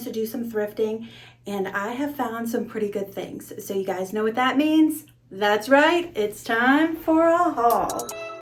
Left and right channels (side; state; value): both; identical; correlation 1.00